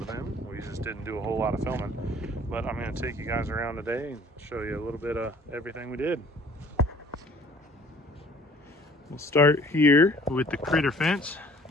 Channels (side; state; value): both; normal; correlation 0.53